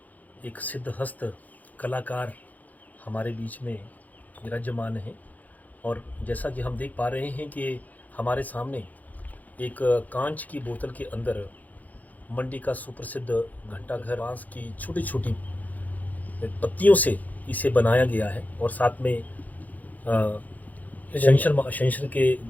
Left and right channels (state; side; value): late; right; 0.080 ms